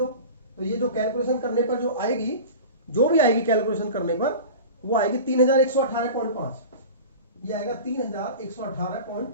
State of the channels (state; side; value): inverted; both; correlation -0.34